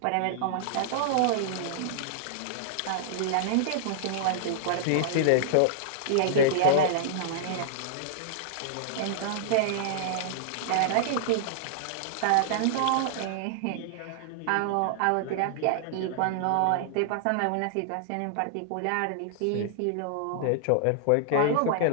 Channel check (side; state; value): both; different; correlation -0.01